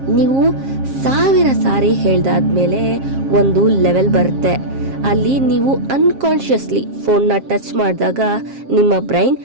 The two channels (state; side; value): late; left; 7.4 ms